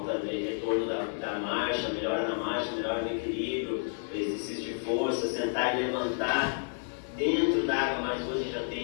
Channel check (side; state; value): right; silent; digital silence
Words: de retorno da marcha, melhora na marcha, melhora no equilíbrio, exercício de força, sentar e levantar dentro da água, mas hoje já